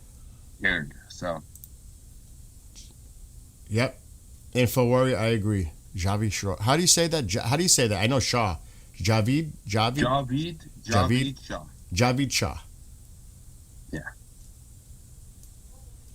scared. So. Yep. Info warrior, I agree. Javid Shah. How do you say that? How do you say that? I know Shah. Javid Shah. Javid Shah. Yeah.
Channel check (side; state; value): both; identical; correlation 1.00